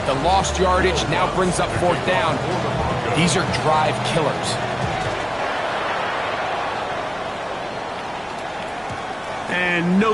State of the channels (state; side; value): identical; both; correlation 1.00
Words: the lost yardage now brings up 4th down. These are drive killers. And